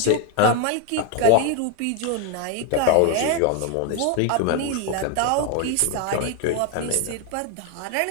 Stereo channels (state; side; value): different; both; correlation 0.01